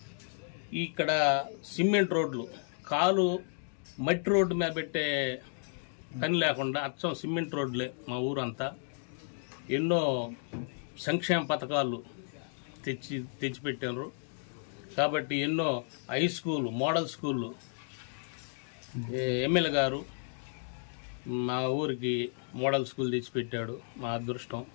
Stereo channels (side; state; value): right; silent; digital silence